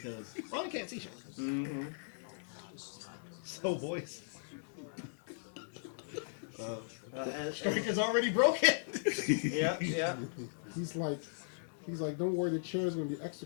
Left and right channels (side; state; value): right; silent; digital silence